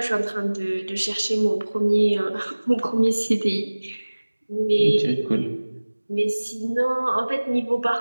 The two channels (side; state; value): both; inverted; correlation -1.00